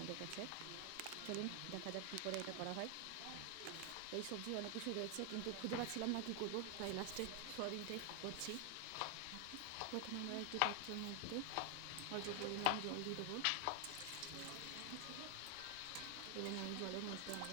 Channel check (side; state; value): both; different; correlation 0.00